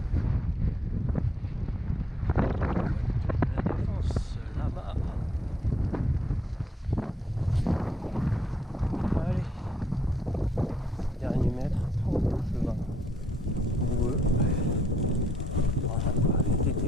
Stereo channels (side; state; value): both; normal; correlation 0.72